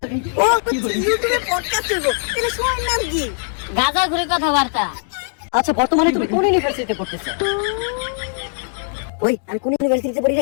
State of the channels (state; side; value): silent; right; digital silence